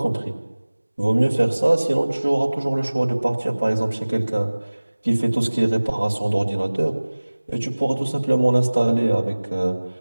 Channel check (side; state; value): both; inverted; correlation -1.00